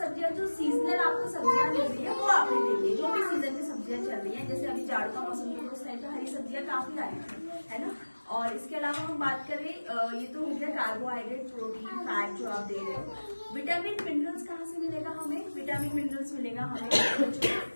जो सीजनल आपको सब्जियां मिल रही है वो आपने देनी है, जो भी सीजन में सब्जियां चल रही हैं। जैसे अभी जाड़ का मौसम है उस टाइम पे हरी सब्जियां काफी आई है ना। और इसके अलावा हम बात करें, ये तो हो गया कार्बोहाइड्रेट, प्रोटीन, फैट जो आप दे रहे हो। विटामिन मिनरल्स कहाँ से मिलेगा हमें? विटामिन मिनरल्स मिलेगा हमें बच्चों को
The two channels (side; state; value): both; inverted; correlation -1.00